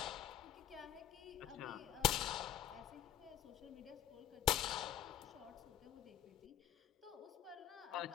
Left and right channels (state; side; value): quieter; right; 11.5 dB